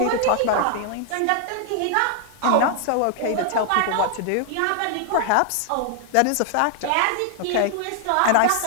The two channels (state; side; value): different; both; correlation 0.00